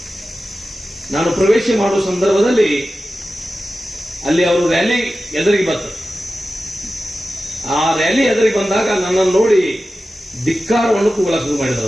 ನಾನು ಪ್ರವೇಶ ಮಾಡುವ ಸಂದರ್ಭದಲ್ಲಿ ಅಲ್ಲಿ ಅವರು ರ್ಯಾಲಿ ಎದುರಿಗೆ ಬಂದರು. ಆ ರ್ಯಾಲಿ ಎದುರಿಗೆ ಬಂದಾಗ ನನ್ನನ್ನು ನೋಡಿ ಧಿಕ್ಕಾರವನ್ನು ಕೂಗಲ ಶುರು ಮಾಡಿದರು.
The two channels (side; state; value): both; normal; correlation 0.93